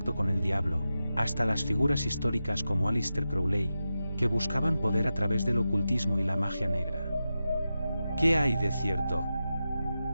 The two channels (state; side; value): inverted; both; correlation -0.91